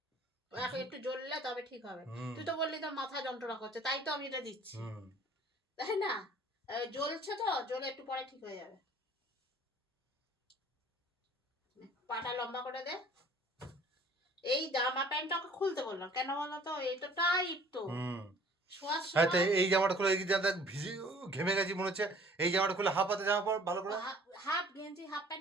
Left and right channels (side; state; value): both; normal; correlation 0.53